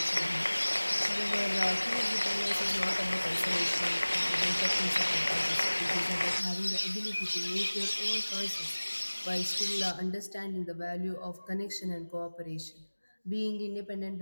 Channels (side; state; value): both; inverted; correlation -1.00